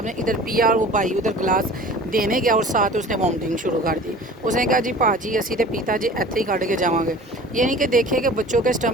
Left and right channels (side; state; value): both; normal; correlation 0.42